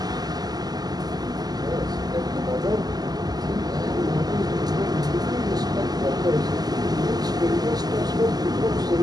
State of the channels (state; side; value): late; left; 0.19 ms